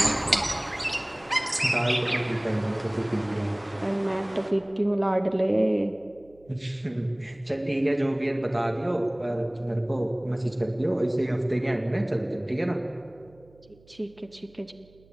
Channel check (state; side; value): noise; right; hum, 27 dB below the sound